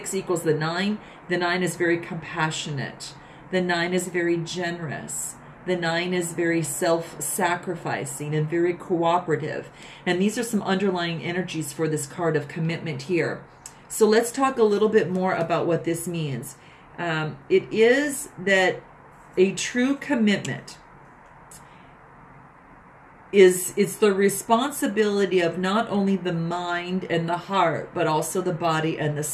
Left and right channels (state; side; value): identical; both; correlation 1.00